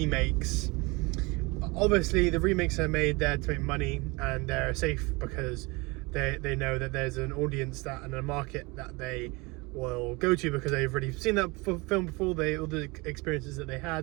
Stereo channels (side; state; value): left; quieter; 25.8 dB